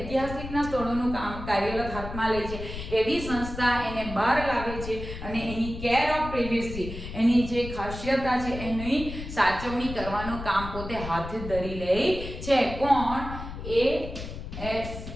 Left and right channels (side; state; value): left; noise; rumble, 9 dB below the sound